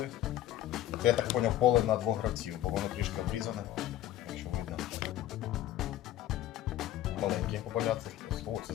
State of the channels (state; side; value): quieter; right; 13.1 dB